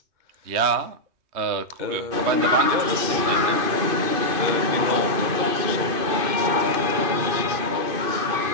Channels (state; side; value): late; left; 2.5 ms